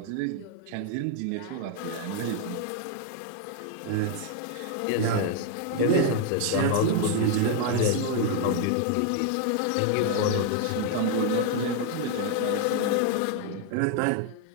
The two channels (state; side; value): different; both; correlation 0.00